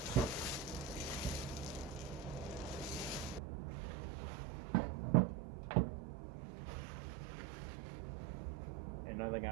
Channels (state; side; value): drops out; left; at 3.4 s